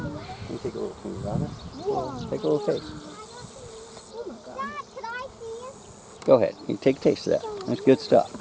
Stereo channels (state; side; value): identical; both; correlation 1.00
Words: Can you take a little finger out of it? Take a little taste. Go ahead. You take a taste of that. That's good stuff.